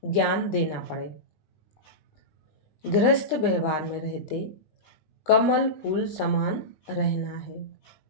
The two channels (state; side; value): late; right; 20 ms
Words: ज्ञान देना पड़े। गृहस्थ व्यवहार में रहते कमल फूल समान रहना है।